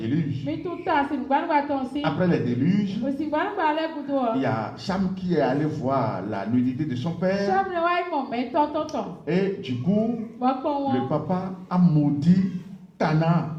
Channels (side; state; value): both; identical; correlation 1.00